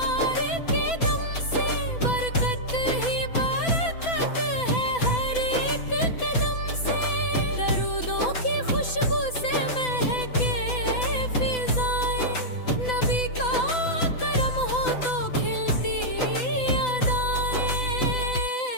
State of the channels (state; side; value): late; right; 6.0 ms